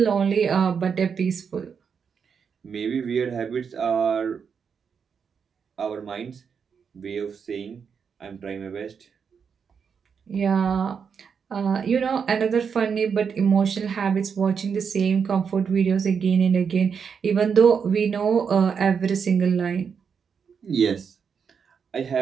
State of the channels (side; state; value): left; quieter; 6.5 dB